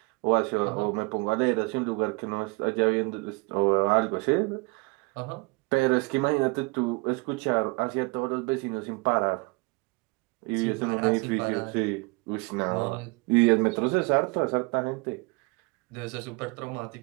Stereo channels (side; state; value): left; quieter; 28.0 dB